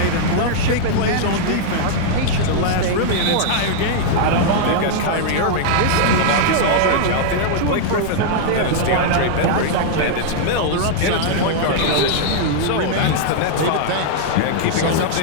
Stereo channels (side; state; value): both; different; correlation -0.01